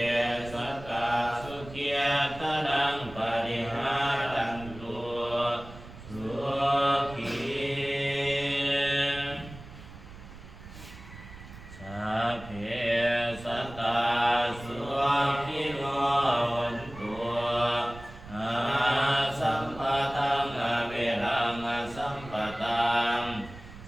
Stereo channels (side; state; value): right; noise; rumble, 16 dB below the sound